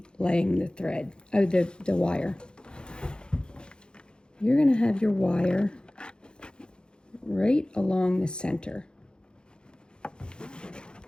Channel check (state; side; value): late; right; 0.049 ms